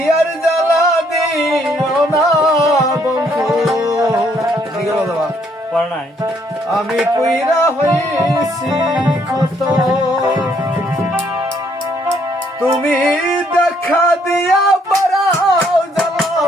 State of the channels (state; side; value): normal; both; correlation 0.68